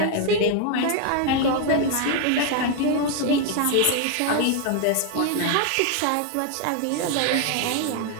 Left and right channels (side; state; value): both; different; correlation 0.00